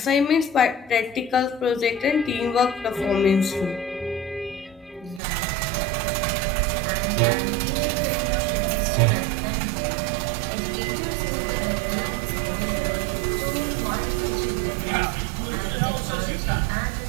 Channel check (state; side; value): drops out; left; at 5.2 s